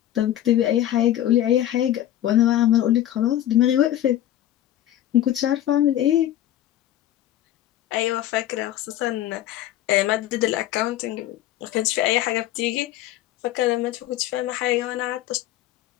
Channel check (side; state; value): right; quieter; 12.7 dB